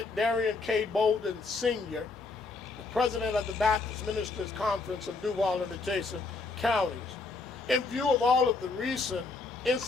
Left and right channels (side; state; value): right; quieter; 3.8 dB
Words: Darian K. Bolden Sr., the President of the Baptist Ministers Conference of Duval and adjacent counties. In view of all of the recent